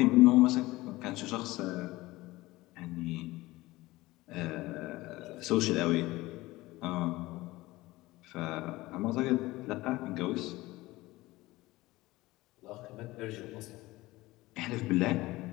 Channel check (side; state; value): right; quieter; 19.2 dB